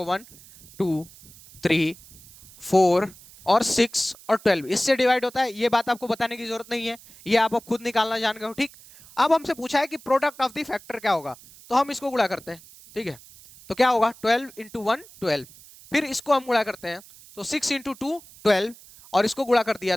1 2 3 4 और 6 और 12 इससे डिवाइड होता है। ये बात आपको बताने की जरूरत नहीं है, ये आप खुद निकालना जान गए हो, ठीक। अब हमसे पूछा है कि प्रोडक्ट ऑफ द फैक्टर क्या होगा, तो हम इसको गुणा करते हैं, ठीक है। तो क्या होगा? 12 इंटू 1 12, फिर इसको हम गुणा करते हैं तो 6 इंटू 2 12, और इसको गुणा कर दिया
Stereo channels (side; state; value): right; noise; hiss, 22 dB below the sound